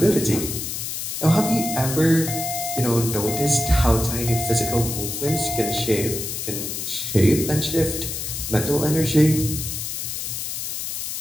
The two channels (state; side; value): noise; left; hiss, 4 dB below the sound